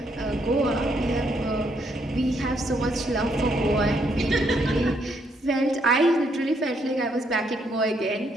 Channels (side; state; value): both; normal; correlation 0.73